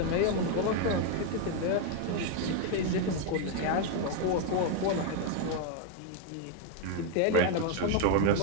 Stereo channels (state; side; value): different; both; correlation 0.01